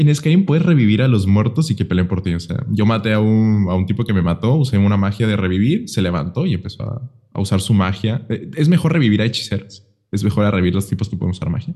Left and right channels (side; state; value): both; identical; correlation 1.00